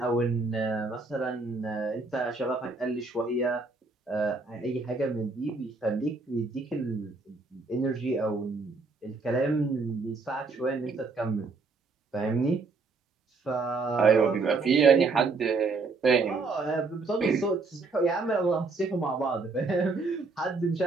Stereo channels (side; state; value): left; quieter; 3.9 dB